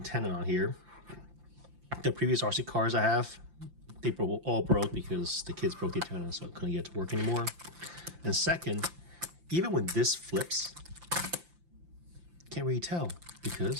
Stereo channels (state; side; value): late; left; 5.8 ms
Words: on here. The previous RC cars I have, they all broke because the kids broke the antenna, so I couldn't get it to work anymore. And second, even when this flips, can't really tell